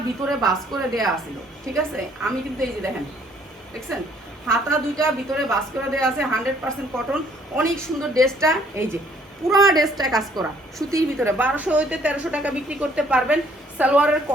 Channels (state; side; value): normal; both; correlation 0.62